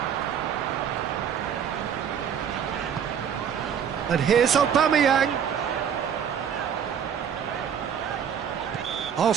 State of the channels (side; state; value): left; quieter; 8.1 dB